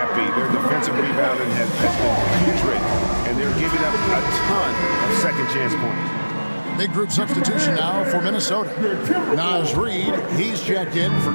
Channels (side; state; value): both; inverted; correlation -1.00